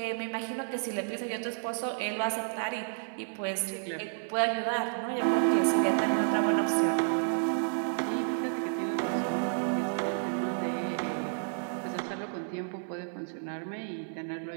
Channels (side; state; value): left; silent; 57 dB below the other